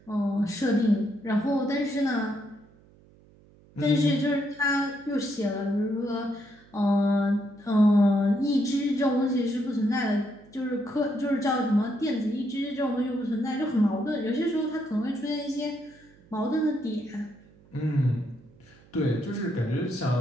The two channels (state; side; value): noise; right; hum, 27 dB below the sound